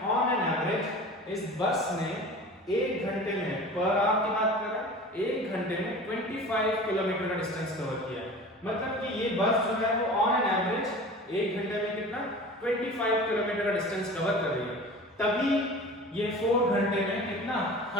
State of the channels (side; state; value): both; normal; correlation 0.38